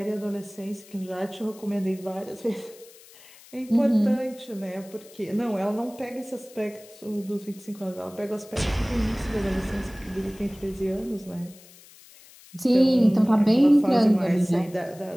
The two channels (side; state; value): left; noise; hiss, 23 dB below the sound